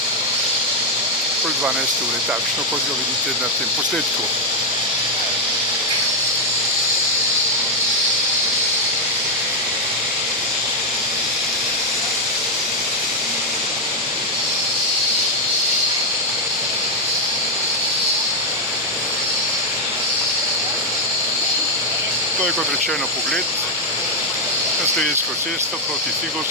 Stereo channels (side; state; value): both; normal; correlation 0.00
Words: okoli 12 ure, takšno, kot ga vidite na tem posnetku. To je, kot rečeno, pogled na Slovensko cesto proti